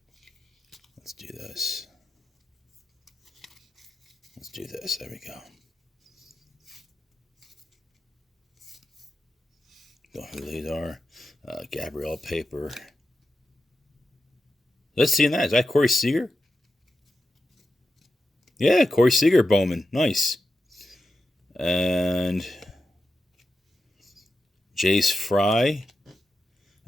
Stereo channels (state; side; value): normal; both; correlation 0.90